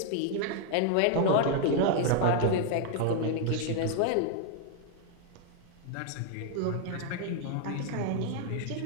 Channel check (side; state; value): both; different; correlation 0.00